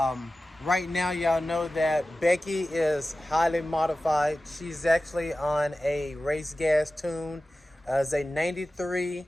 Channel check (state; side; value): normal; both; correlation 0.95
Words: Right now, y'all know that Becky is highly modified. She's actually on a race gas tune. It's a 93